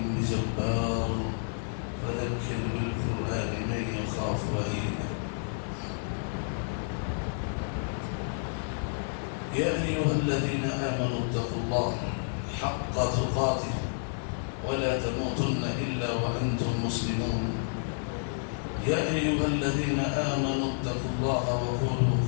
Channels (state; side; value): silent; right; 58 dB below the other